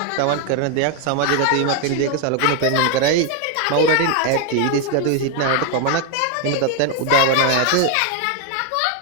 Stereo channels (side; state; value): both; different; correlation 0.01